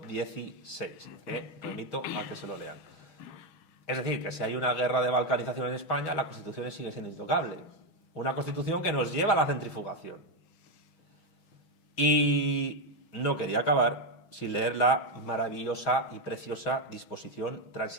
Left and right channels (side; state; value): right; late; 6.3 ms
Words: que remito a que se lo lean. Es decir, que si hay una guerra de balcanización en España, la Constitución sigue siendo intocable. Una Constitución que nos lleva a la centrifugación. Y no quería acabar sin leer la maravillosa y preciosa disposición